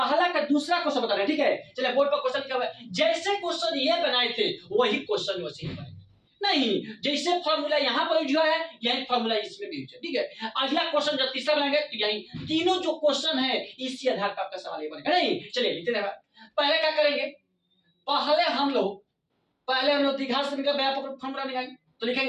का दूसरा क्वेश्चन बता रहे हैं, ठीक है। चलिए बोर्ड पर क्वेश्चन लिखा हुआ है, जैसे क्वेश्चन ये बनाए थे वही क्वेश्चन वैसे ही बनाए नहीं, जैसे फॉर्मूला यहाँ पर यूज हुआ है यही फॉर्मूला इसमें भी यूज है, ठीक है। अगला क्वेश्चन जब तीसरा बनाएंगे तो यही तीनों जो क्वेश्चन है इसी आधार पर आपका सवाल ये बनेगा नहीं। चलिए लिखते हैं, पहले क्या करेंगे, पहले हम लोग द्विघात समीकरण का व्यापक फॉर्मूला निकालेंगे, तो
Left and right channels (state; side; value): identical; both; correlation 1.00